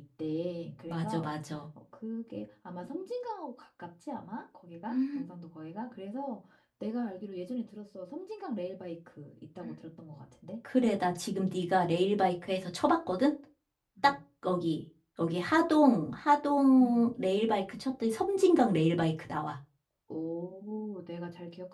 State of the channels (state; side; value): identical; both; correlation 1.00